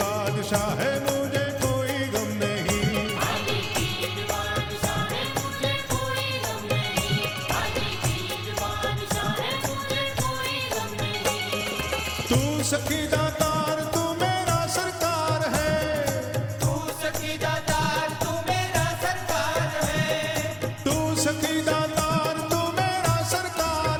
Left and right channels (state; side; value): identical; both; correlation 1.00